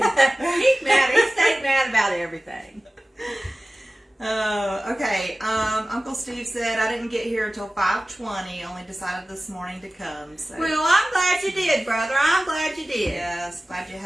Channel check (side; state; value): both; normal; correlation 0.97